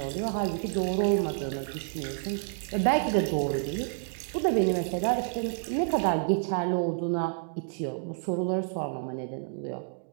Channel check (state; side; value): silent; left; digital silence